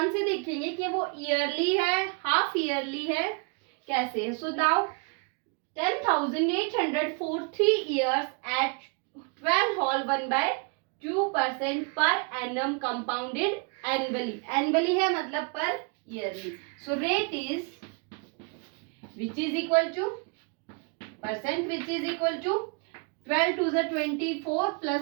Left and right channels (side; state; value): left; quieter; 34.4 dB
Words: से देखेंगे कि वो ईयरली है, हाफ ईयरली है, कैसे है. So now 10,800 for 3 years at 12 whole 1/2% per annum compounded annually. Annually है मतलब पर yearly. So rate is which is equal to percent which is equal to 12 to the 24